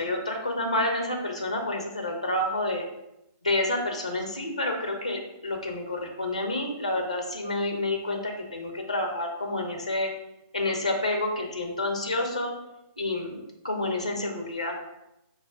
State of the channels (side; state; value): both; inverted; correlation -0.48